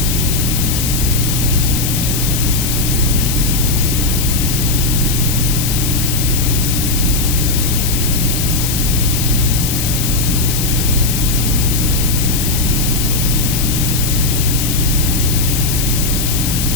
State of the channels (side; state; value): left; noise; hiss, 2 dB below the sound